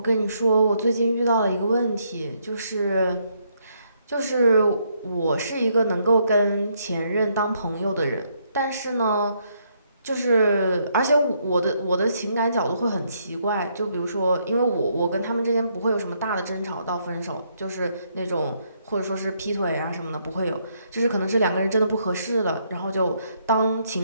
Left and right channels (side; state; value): both; inverted; correlation -0.73